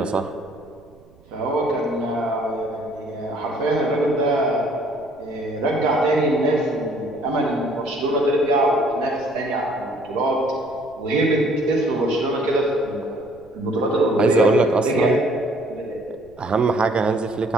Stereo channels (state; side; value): noise; right; rumble, 27 dB below the sound